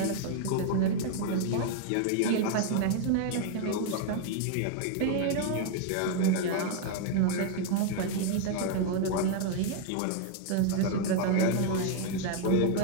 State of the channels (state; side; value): different; both; correlation 0.00